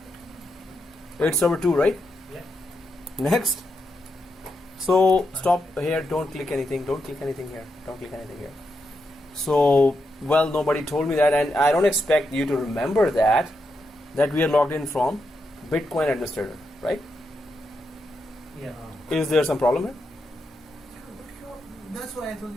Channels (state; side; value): normal; both; correlation 0.84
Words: it's server 2, right? Yeah. Next. So stop here, don't click anything here. So, well, nobody told me that, and I don't expect you to remember that we are logged in from Bitcoin administrator, right? Yeah. Is there some problem here? That's why I told